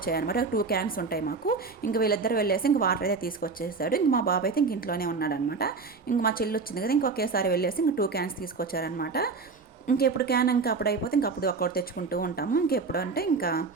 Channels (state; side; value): quieter; left; 4.4 dB